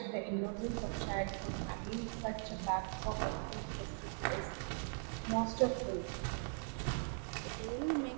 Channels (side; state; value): left; silent; 51 dB below the other